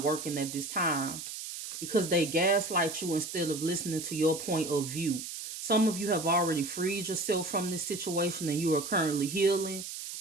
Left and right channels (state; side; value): noise; right; hiss, 8 dB below the sound